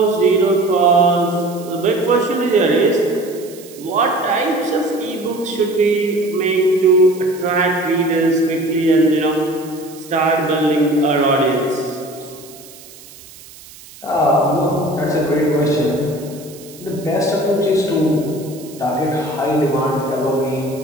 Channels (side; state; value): right; noise; hiss, 20 dB below the sound